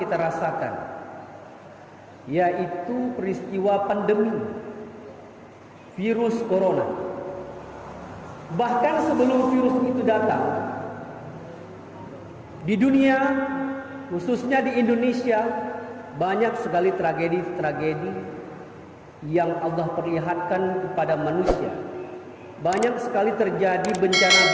rasakan, yaitu peristiwa pandemi virus corona. Bahkan sebelum virus itu datang, di dunia, khususnya di Indonesia, banyak sekali tragedi-tragedi yang Allah perlihatkan kepada manusia. Banyak sekali terjadi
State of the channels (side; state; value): both; identical; correlation 1.00